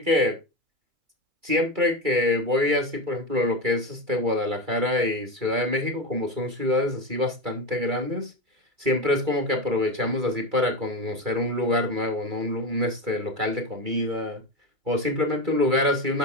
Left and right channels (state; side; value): late; left; 2.3 ms